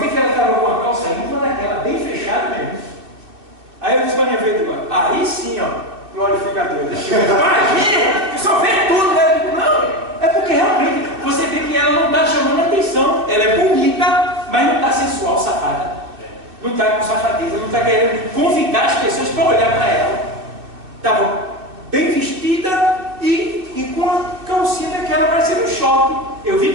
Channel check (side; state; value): left; late; 2.6 ms